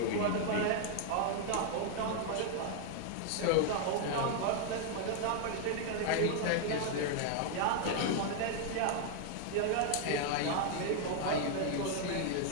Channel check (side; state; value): both; different; correlation 0.00